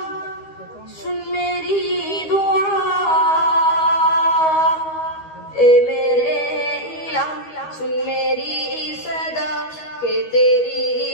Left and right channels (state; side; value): late; right; 13 ms